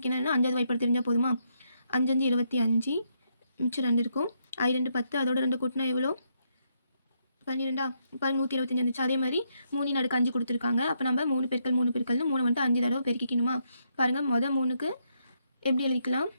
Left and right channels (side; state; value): both; inverted; correlation -0.77